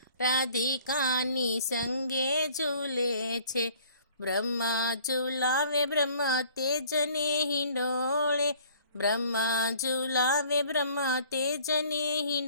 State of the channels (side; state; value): both; inverted; correlation -0.54